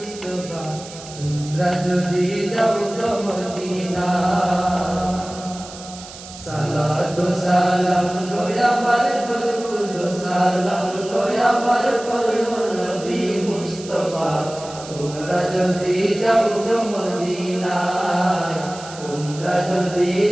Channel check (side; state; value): right; noise; hiss, 15 dB below the sound